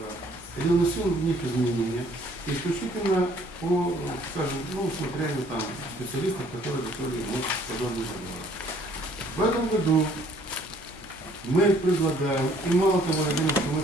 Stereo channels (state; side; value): normal; both; correlation 0.60